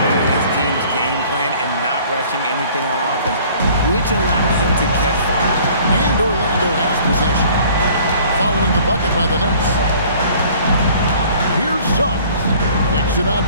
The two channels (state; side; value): inverted; both; correlation -0.53